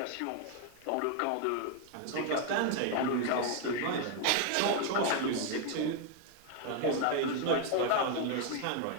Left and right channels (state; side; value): different; both; correlation 0.00